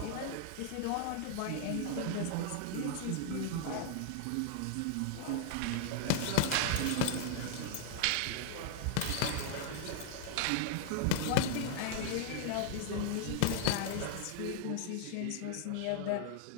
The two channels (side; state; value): both; different; correlation 0.00